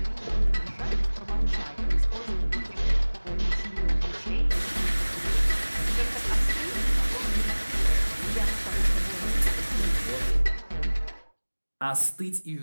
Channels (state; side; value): inverted; both; correlation -1.00